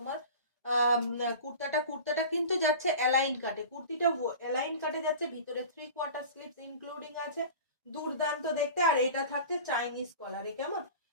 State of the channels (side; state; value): both; inverted; correlation -0.37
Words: কুর্তাটা কিন্তু যাচ্ছে অ্যালাইন কাটে, কুর্তিটা অ্যালাইন কাটে যাচ্ছে, ভিতরে 3/4 স্লিভস ইনক্লুডিং আছে। দুর্দান্ত দেখতে। আর এটা থাকছে চাইনিজ কলারে, কেমন